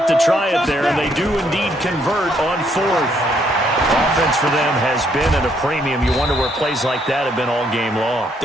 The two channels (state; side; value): normal; both; correlation 0.70